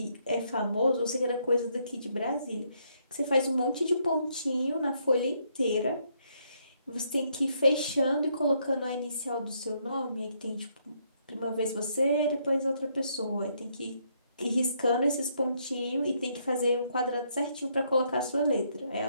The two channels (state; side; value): inverted; both; correlation -0.73